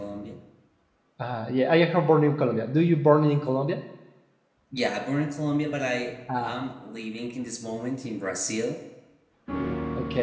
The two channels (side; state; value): both; identical; correlation 1.00